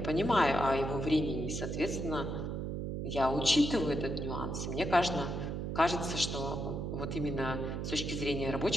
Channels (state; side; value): noise; right; hum, 3 dB below the sound